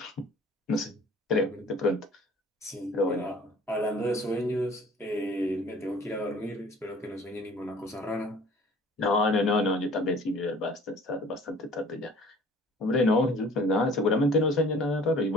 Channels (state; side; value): normal; both; correlation 0.49